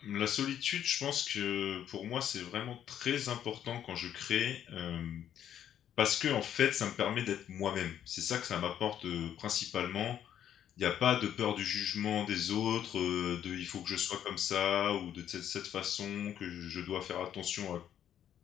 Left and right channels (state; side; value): quieter; right; 10.2 dB